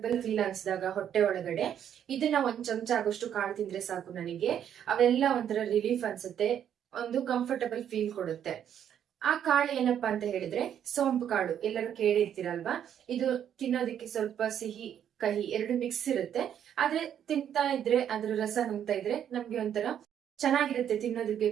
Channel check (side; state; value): left; quieter; 9.5 dB